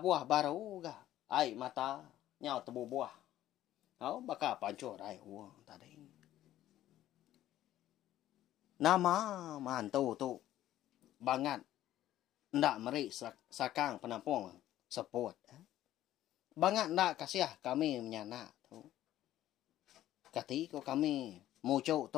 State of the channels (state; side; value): quieter; right; 13.3 dB